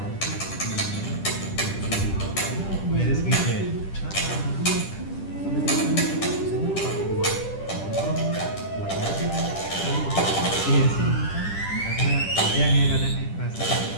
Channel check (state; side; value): late; right; 10 ms